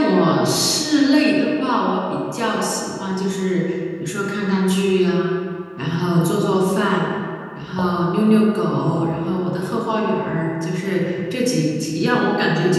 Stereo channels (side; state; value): both; identical; correlation 1.00